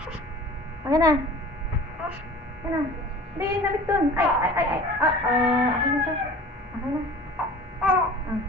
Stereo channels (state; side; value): normal; both; correlation 0.42